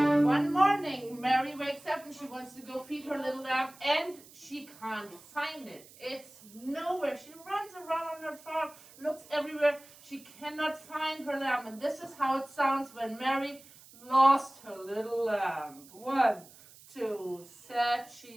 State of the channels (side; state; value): right; noise; hiss, 22 dB below the sound